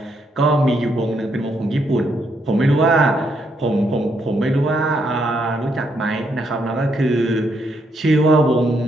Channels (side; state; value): both; normal; correlation 0.76